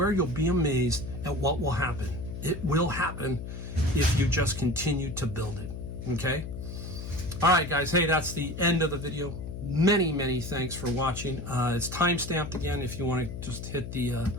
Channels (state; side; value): noise; left; hum, 8 dB below the sound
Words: you'll be amazed at what will happen. It will happen if you just continue to build it. Okay? All right, guys. Hey, that's the end of the video. Many thanks for watching. It's time-stamped again if you want to just hit the